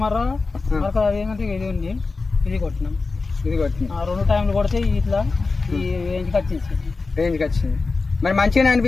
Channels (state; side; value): quieter; right; 4.0 dB